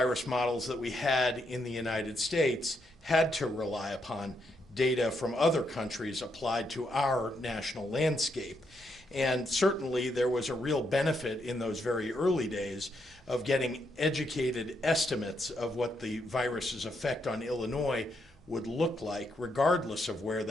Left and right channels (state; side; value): normal; both; correlation 0.78